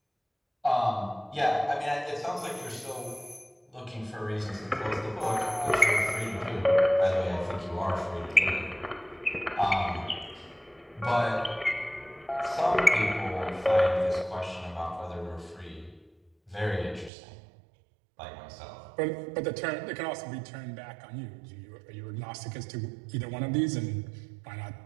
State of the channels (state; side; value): drops out; left; at 17.1 s